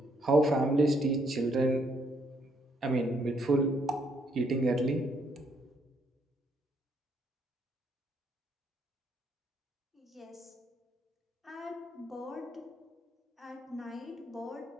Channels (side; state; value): both; normal; correlation 0.71